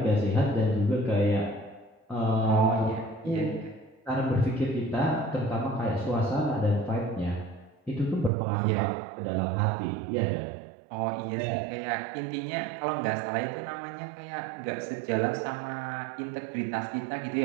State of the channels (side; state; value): left; drops out; at 8.3 s